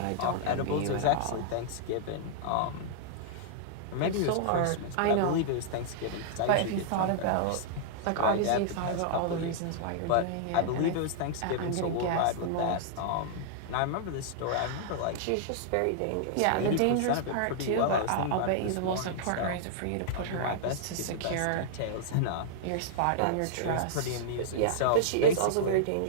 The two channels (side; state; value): both; different; correlation -0.02